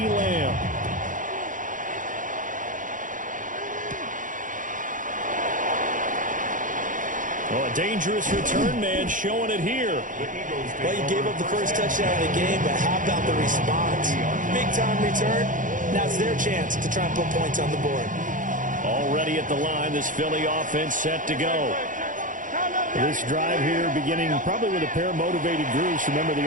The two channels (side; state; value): left; late; 0.38 ms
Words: Lamb. Well, a dangerous return man showing it here. Well, you gave up the first touchdown of the game, but how about the response? Big-time return. Now it's their chance to try and put points on the board. Already at the line, this Philly offense set to go. This drive here beginning probably with a pair of motivated groups. Remember, the